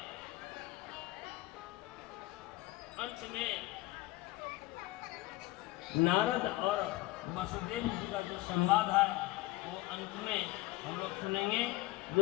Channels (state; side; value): quieter; right; 18.6 dB